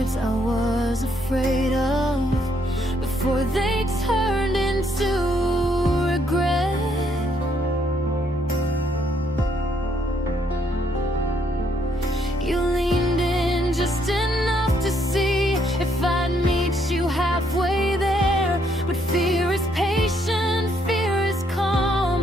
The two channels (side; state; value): both; normal; correlation 0.71